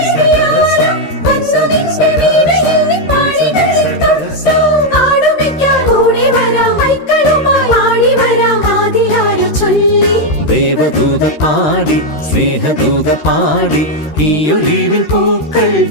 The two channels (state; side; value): late; right; 13 ms